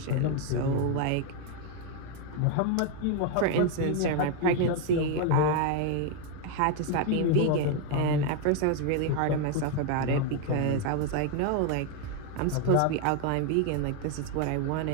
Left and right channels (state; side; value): different; both; correlation 0.01